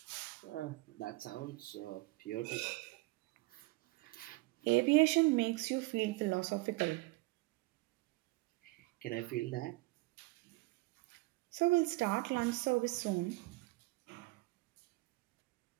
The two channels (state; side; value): quieter; left; 22.3 dB